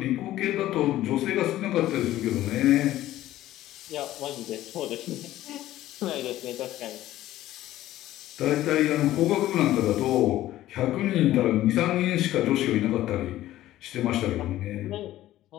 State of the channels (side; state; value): right; quieter; 14.5 dB